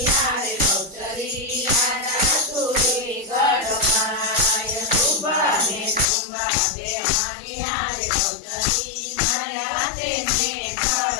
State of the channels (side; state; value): right; drops out; at 6.1 s